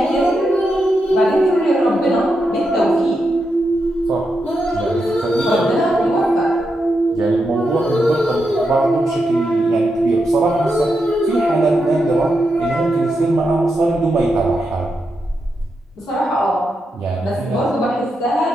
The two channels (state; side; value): normal; both; correlation 0.85